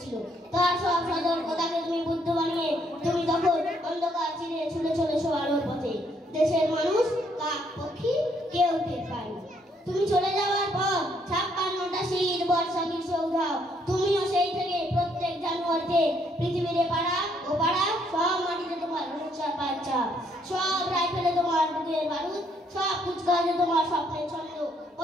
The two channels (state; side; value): normal; both; correlation 0.70